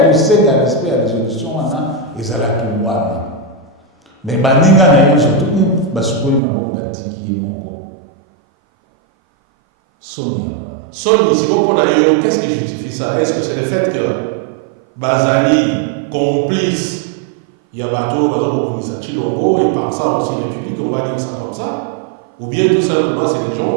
un respect de la résolution Wana, ils allaient tout Wana. Mais baninga na yo surtout basukoli maboko batiki moko Sonia. Sony, si vous prenez, qu'est-ce qui justifie ça? Est-ce que c'est le fait que Bazali complice Yabato, Chilombo et par ça aussi République, on va dire ça comme ça? Ou bien tout simplement c'est des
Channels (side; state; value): left; drops out; at 6.4 s